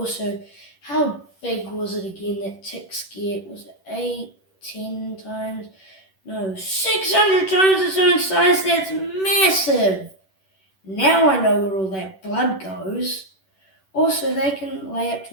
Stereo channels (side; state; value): right; late; 10 ms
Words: how big was it again that ticks get? Was it 8, 10 times? No, 600 times its own size. That's massive. Now I know where all that blood goes. Also, they can lay up